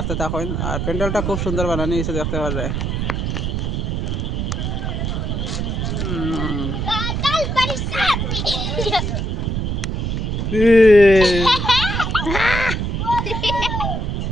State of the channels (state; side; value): noise; right; rumble, 1 dB below the sound